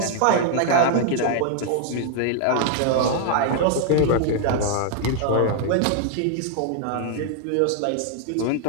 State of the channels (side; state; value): both; different; correlation 0.00